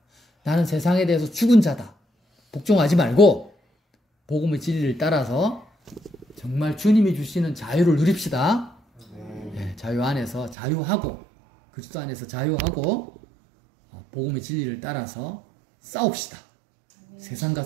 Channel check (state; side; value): drops out; left; at 10.6 s